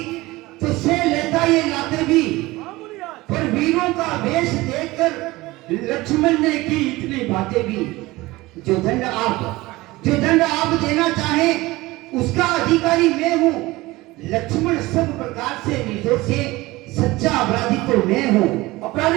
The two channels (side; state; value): left; quieter; 19.9 dB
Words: तो से लेता ये लाते भी, पर वीरों का वेश देखकर लक्ष्मण ने की इतनी बातें भी। जो दंड आप देना चाहे उसका अधिकारी मैं हूँ। लक्ष्मण सब प्रकार से निर्दोष है, सच्चा अपराधी तो मैं हूँ।